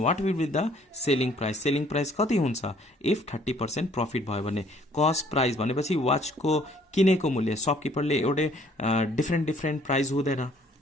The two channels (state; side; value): normal; both; correlation 0.60